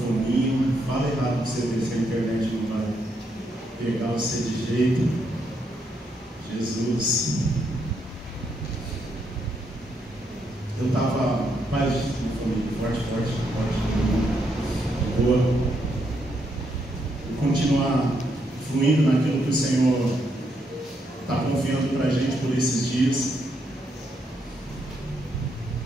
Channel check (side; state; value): both; normal; correlation 0.77